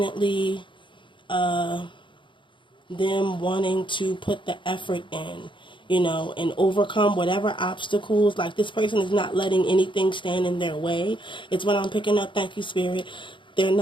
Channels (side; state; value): right; late; 0.24 ms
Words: them wanting to put the effort in, and overcome whatever obstacles. Like, this person is not letting anything stand in their way. It's what I'm picking up. Thank you, Spirit. They're